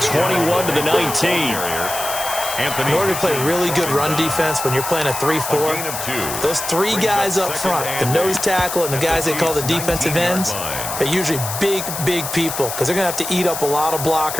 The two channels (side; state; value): left; noise; hiss, 6 dB below the sound